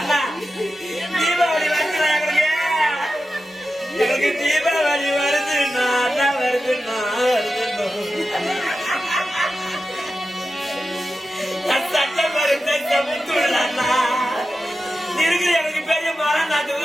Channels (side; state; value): both; normal; correlation 0.92